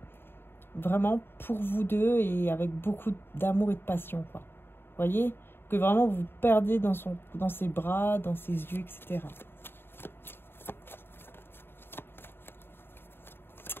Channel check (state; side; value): late; right; 0.11 ms